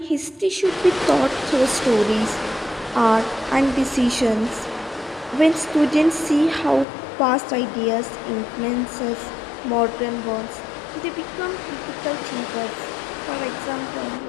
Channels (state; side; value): drops out; right; at 6.9 s